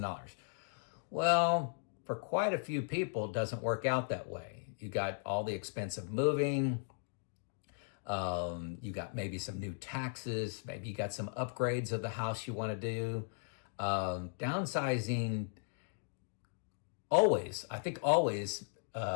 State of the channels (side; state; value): right; silent; digital silence